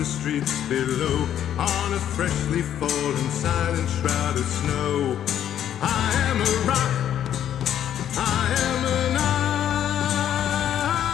streets below on a freshly fallen silent shroud of snow. I am a rock, I am an island.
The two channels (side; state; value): right; quieter; 10.4 dB